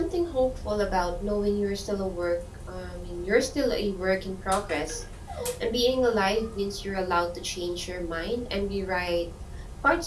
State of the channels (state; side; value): identical; both; correlation 1.00